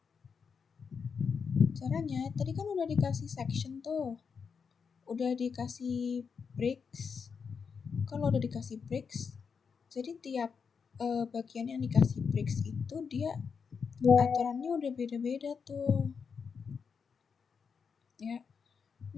Caranya, tadi kan udah dikasih section tuh. Udah dikasih breaks. Kalau udah dikasih breaks, jadi tiap bagian yang dikasih breaks itu dia aturannya udah beda-beda tuh. Ya,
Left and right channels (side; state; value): right; quieter; 6.0 dB